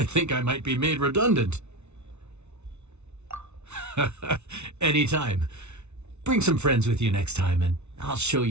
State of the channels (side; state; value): left; late; 0.81 ms